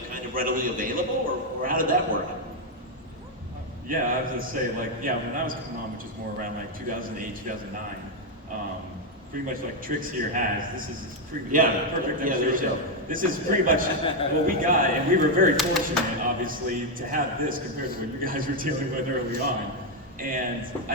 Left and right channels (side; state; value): both; normal; correlation 0.02